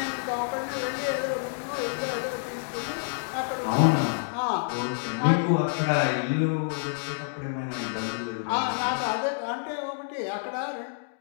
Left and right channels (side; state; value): right; silent; digital silence